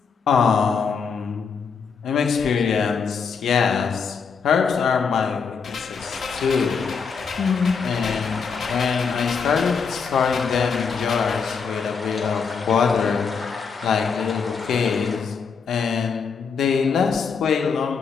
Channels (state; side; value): quieter; right; 5.7 dB